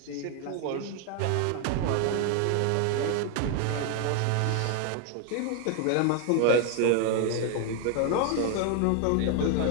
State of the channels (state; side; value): different; both; correlation 0.01